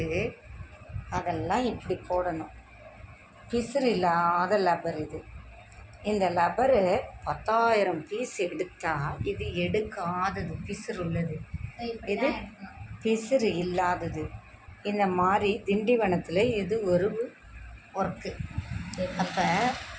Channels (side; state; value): both; identical; correlation 1.00